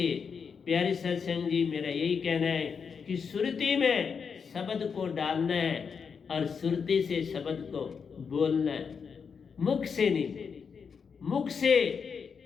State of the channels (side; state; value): right; quieter; 6.1 dB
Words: प्यारे सत्संग जी, मेरा यही कहना है कि सुरती में शब्द को डालना है और सुरती से शब्द को बोलना है, मुख से नहीं। मुख से